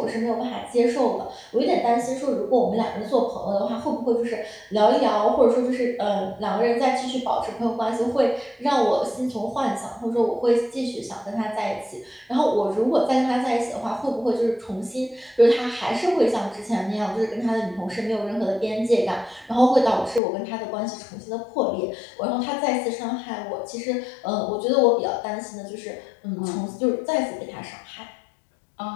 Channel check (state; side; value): drops out; right; at 20.2 s